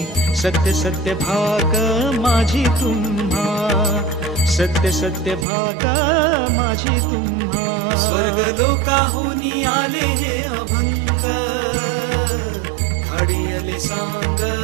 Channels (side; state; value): left; drops out; at 5.5 s